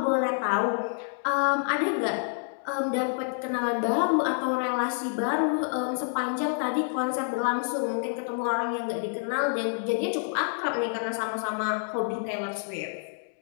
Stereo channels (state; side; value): silent; right; 58 dB below the other